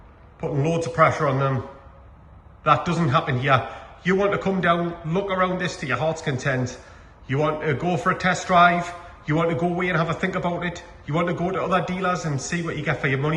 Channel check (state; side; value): identical; both; correlation 1.00